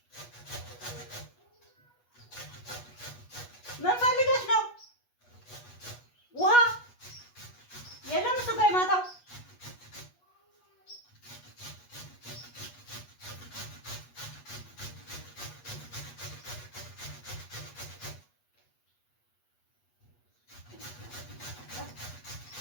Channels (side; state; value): right; late; 8.3 ms